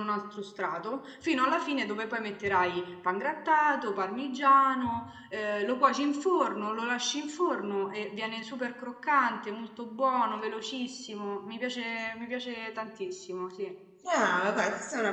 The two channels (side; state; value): both; identical; correlation 1.00